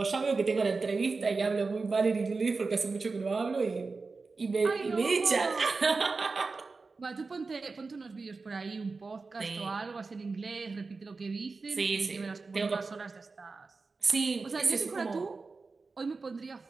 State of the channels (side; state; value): left; quieter; 4.1 dB